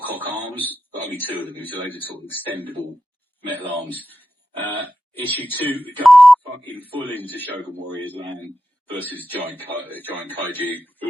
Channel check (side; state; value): both; normal; correlation 0.91